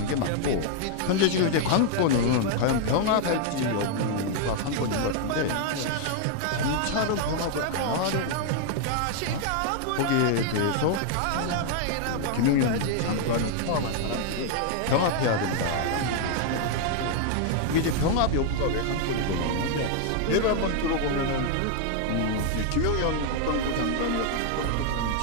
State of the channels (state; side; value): different; both; correlation 0.00